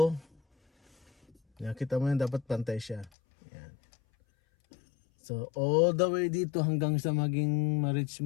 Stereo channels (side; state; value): right; drops out; at 3.1 s